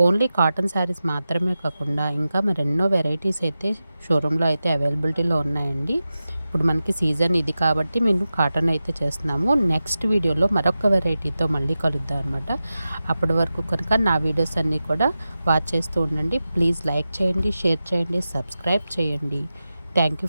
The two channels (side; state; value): both; inverted; correlation -0.93